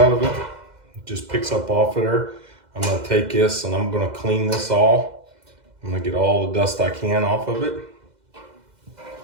of it, it just picks up off of there. I'm gonna take this and I'm gonna clean this all. I'm gonna get all the dust I can off of it.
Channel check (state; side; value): late; left; 2.0 ms